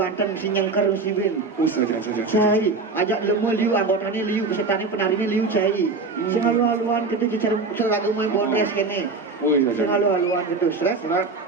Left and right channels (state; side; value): quieter; left; 4.0 dB